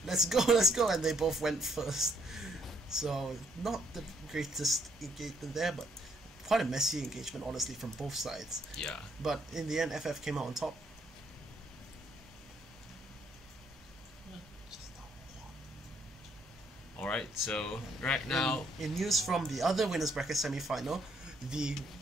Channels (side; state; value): both; normal; correlation 0.69